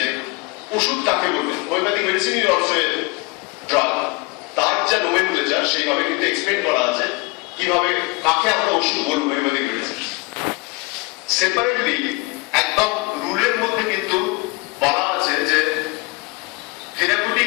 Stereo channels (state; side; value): quieter; right; 26.2 dB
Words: ওষুধ কাকে বলবে। Homeopathic medicine is also a drug, তার যা নোমেনক্লেচার সেইভাবে কিন্তু এক্সপ্লেইন করা আছে কিভাবে কাকে আমরা ওষুধ বলবো হোমিওপ্যাথিক মেডিসিন। সেপারেটলি একদম রুলের মধ্যে কিন্তু বলা আছে যে